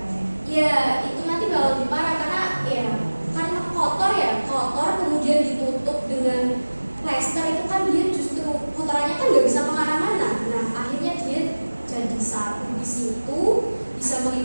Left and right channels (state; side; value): inverted; both; correlation -1.00